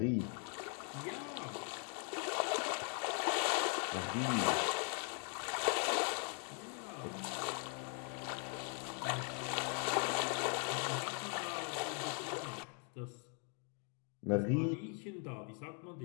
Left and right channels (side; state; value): right; quieter; 37.6 dB